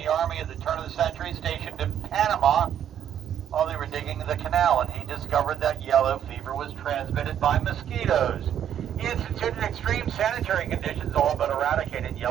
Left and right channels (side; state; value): left; quieter; 9.8 dB